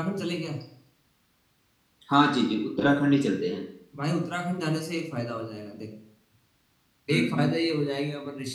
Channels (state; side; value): identical; both; correlation 1.00